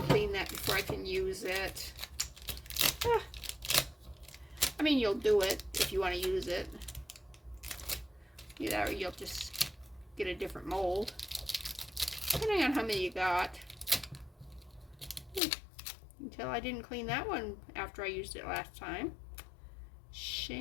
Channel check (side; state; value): right; drops out; at 15.4 s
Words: that before I can use it. I mean, you'll do it if you want to use it. Or you'll just get a different mold, depending on how many you got. until I didn't clean that one after I used it last time.